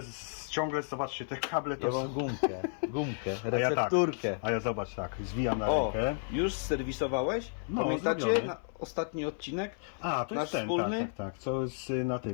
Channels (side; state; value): right; silent; 56 dB below the other